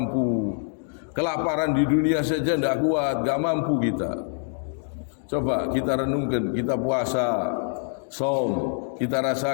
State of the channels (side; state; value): right; silent; digital silence